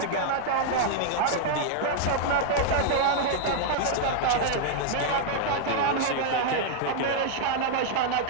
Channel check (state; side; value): different; both; correlation -0.01